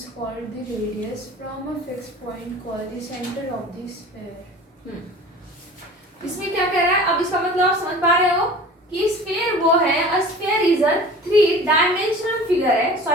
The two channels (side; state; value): both; normal; correlation 0.41